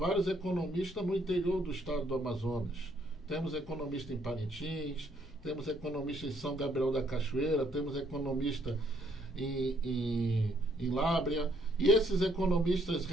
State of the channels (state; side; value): normal; both; correlation 0.69